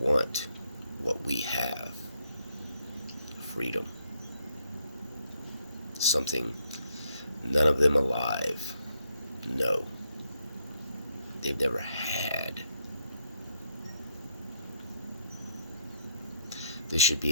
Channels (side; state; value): both; inverted; correlation -0.74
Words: what we have, freedom. Something none of them alive know. They've never had. This should